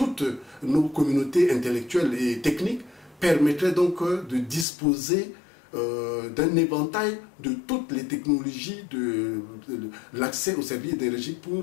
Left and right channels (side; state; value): right; drops out; at 4.7 s